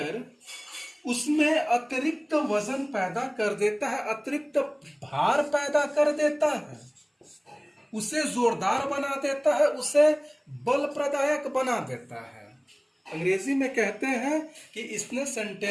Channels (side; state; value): both; identical; correlation 1.00